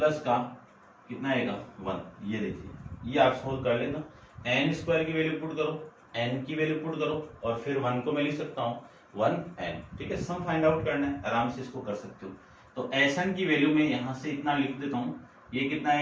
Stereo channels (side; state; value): both; identical; correlation 1.00